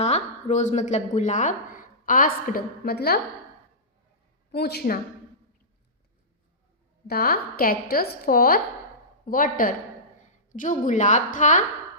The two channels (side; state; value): both; normal; correlation -0.19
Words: रोज मतलब गुलाब, आस्क्ड मतलब पूछना, द कैक्टस फॉर वाटर। जो गुलाब था